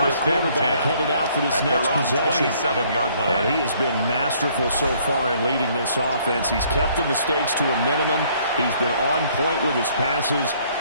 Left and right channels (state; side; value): inverted; both; correlation -0.63